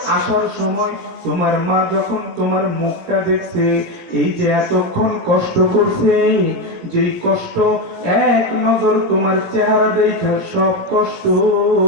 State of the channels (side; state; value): left; late; 16 ms